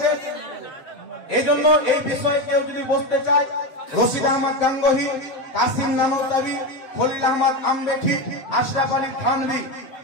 এই জন্য এই বিষয়ে কেউ যদি বসতে চায়, রশিদ আহমদ গাঙ্গোহী, কাসিম নানতাবি, খলিল আহমদ আমরেঠি, আশরাফ আলী থানভী,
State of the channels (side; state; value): right; late; 7.4 ms